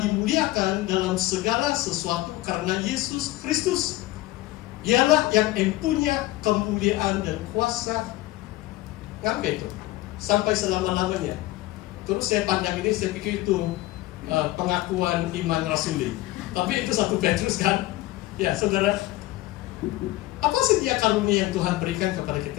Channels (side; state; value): right; quieter; 17.4 dB